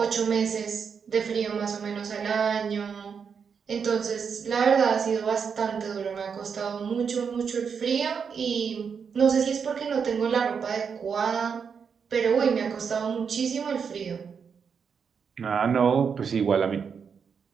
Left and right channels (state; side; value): quieter; left; 6.4 dB